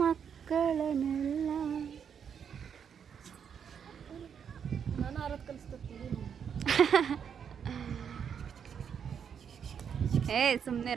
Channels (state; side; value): quieter; left; 7.6 dB